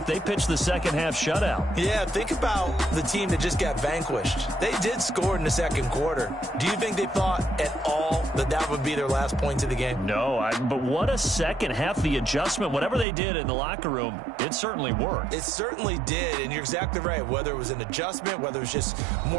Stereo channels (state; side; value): drops out; left; at 13.1 s